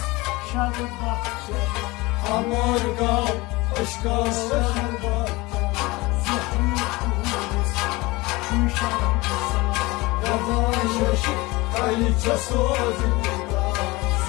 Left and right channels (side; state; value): right; quieter; 22.5 dB